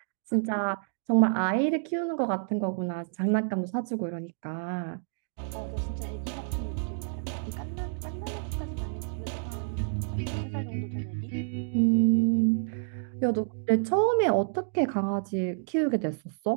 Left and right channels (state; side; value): silent; left; digital silence